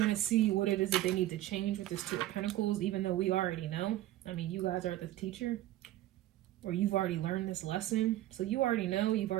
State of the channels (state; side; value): quieter; left; 14.7 dB